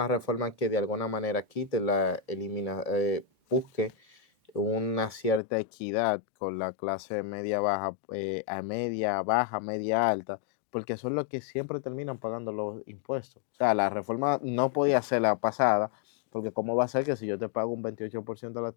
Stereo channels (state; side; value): drops out; right; at 5.4 s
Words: reforma que de alguna manera quite busque una cierta equidad con la clase media baja, a media baja, media alta, porque son los que siempre terminan pagando los impuestos. O sea, la reforma no podía ser la pasada, porque ¿cómo va a ser que si yo te pago un 28% de las